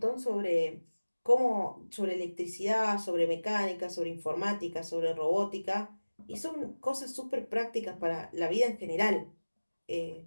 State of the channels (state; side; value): inverted; both; correlation -1.00